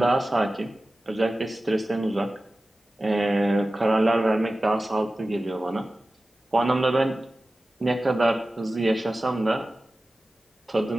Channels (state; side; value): normal; both; correlation 0.95